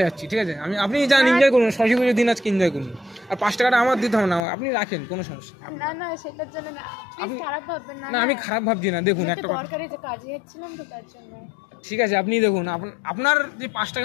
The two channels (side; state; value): right; drops out; at 4.4 s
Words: যাচ্ছি, ঠিক আছে? আপনি যান, এনজয় করুন, সরস্বতী পুজোর দিন আজকে এনজয় করুন, আর 5 টাকাটা আমার দিতে হবে না, আপনি রাখেন, কোনো সমস্যা নেই। না না সেটার জন্য না, আপনি- খারাপ ভাববেন না। না আমি খারাপ ভাবছি না, দেখুন একটা কথা, দরকারি যে কাজে যাচ্ছিলাম তো তার জন্য। ঠিক আছে আপনি দেখুন, আপনার যে 5 টাকা